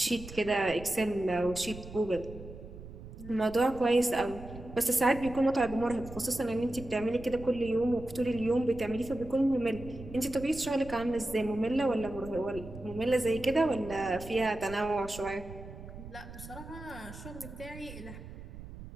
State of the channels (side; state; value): right; noise; rumble, 14 dB below the sound